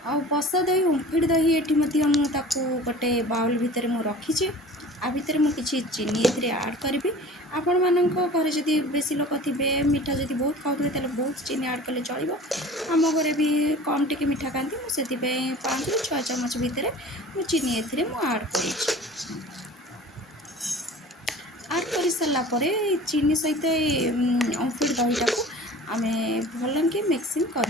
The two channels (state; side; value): normal; both; correlation 0.42